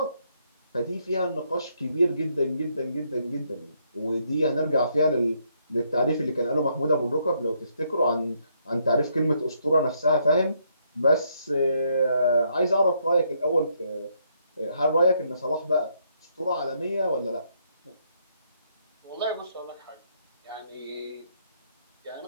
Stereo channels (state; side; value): inverted; both; correlation -0.73